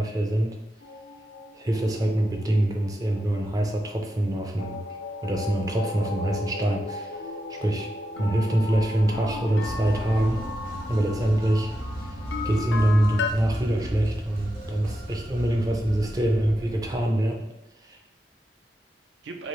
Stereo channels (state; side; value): normal; both; correlation 0.87